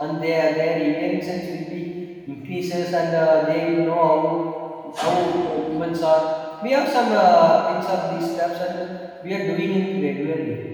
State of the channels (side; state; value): both; identical; correlation 1.00